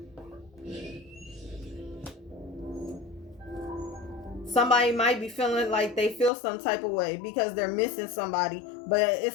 Somebody might be feeling like they feel some type of way because they're missing somebody, but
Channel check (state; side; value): drops out; right; at 6.3 s